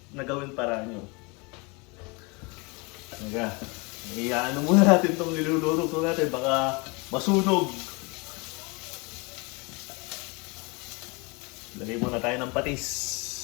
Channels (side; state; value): right; quieter; 29.2 dB